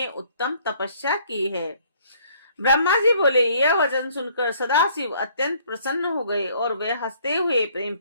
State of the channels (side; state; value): both; inverted; correlation -0.61